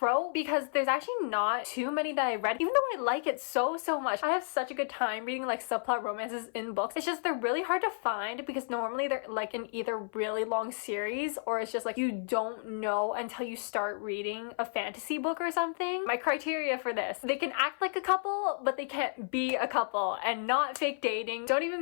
because there's actually not too many that I read, even though I like it so much. I have such a good time reading subplot romances in books. It's just they're really hard to find because normally they're in either really long series or it's just you don't know until you start reading a fantasy book or something. My criteria for this: they can act like a couple, but they can't be a couple, and not fake dating. Don't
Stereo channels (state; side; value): silent; right; 56 dB below the other